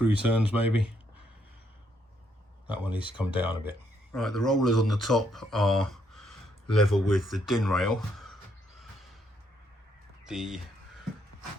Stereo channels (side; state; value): both; normal; correlation 0.73